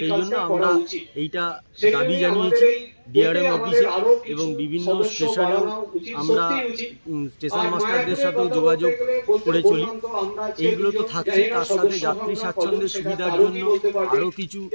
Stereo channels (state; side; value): inverted; both; correlation -1.00